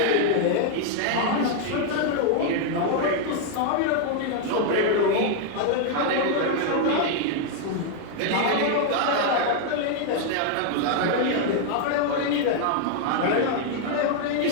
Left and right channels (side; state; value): both; different; correlation 0.00